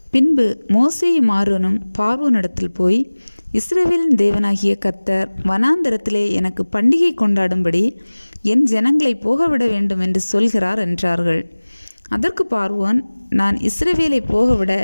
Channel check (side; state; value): both; inverted; correlation -1.00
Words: பின்பு மோசேயும் ஆரோனும் பார்வோனிடத்தில் போய், இஸ்ரவேலின் தேவனாகிய கர்த்தர் வனாந்தரத்திலே எனக்கு பண்டிகை கொண்டாடும்படி என் ஜனங்களை போகவிட வேண்டும் என்று சொல்கிறார் என்றார்கள். அதற்கு பார்வோன், நான் இஸ்ரவேலை போகவிட